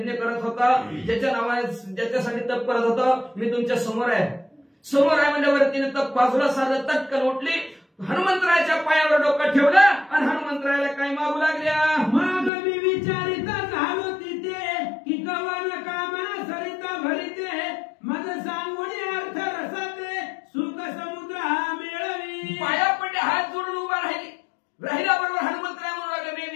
करत होता, ज्याच्या नावाने ज्याच्यासाठी तप करत होता मी तुमच्या समोर आहे. समोर आहे म्हणजे वरतीने तप बाजूला साधलं. तटकन उठली. हनुमंतरायाच्या पायावर डोकं ठेवलं आणि हनुमंतरायाला काय मागू लागल्या. मग मी विचारित झालो तिथे की कवन कामना सरिता भरिते मग सांगून अर्थ रसाते सुख समुद्र हा मिळवी. पाया पडले हात जोडून उभा राहिल्याबरोबर हनुमंतराय म्हणू लागले. मी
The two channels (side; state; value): right; drops out; at 12.5 s